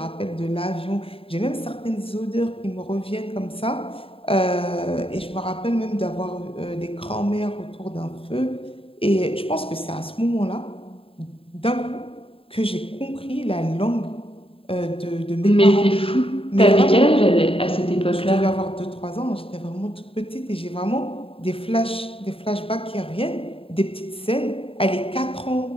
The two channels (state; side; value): late; right; 0.27 ms